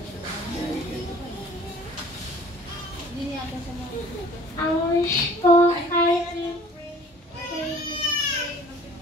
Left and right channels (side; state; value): both; normal; correlation 0.50